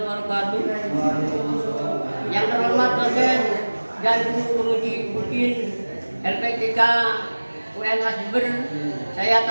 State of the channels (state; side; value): inverted; both; correlation -1.00